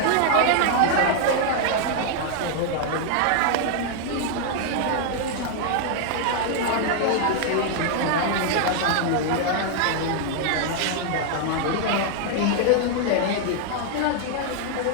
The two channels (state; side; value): different; both; correlation 0.00